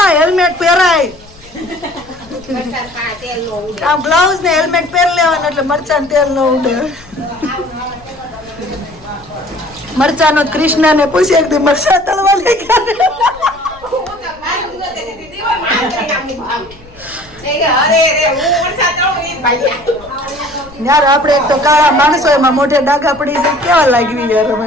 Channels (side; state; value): left; noise; rumble, 24 dB below the sound